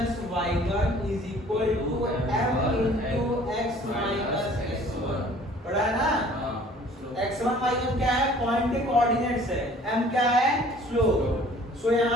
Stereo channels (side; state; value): both; normal; correlation 0.52